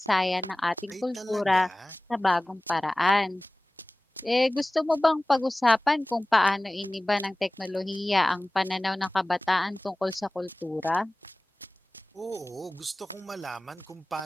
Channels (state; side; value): normal; both; correlation 0.98